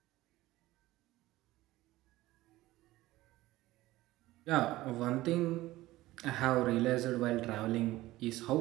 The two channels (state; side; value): quieter; left; 17.3 dB